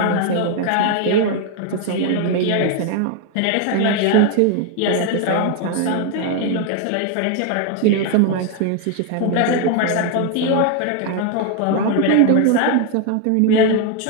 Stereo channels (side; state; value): both; different; correlation 0.01